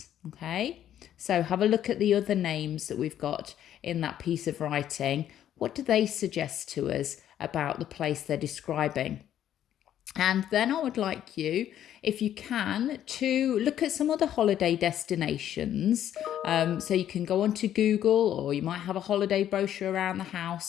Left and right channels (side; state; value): right; quieter; 11.0 dB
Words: Okay, so have a look at the other names that we've got in that piece of writing. What do they suggest to us about the place they're describing? And then I would like you, if you can, to look at some other holiday destinations. So you can go onto Google, or you might have a holiday brochure around the